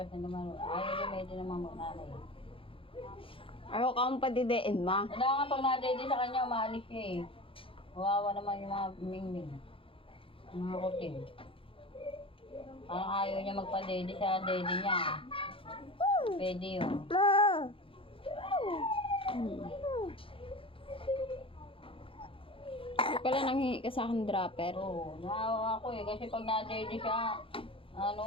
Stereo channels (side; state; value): right; late; 0.26 ms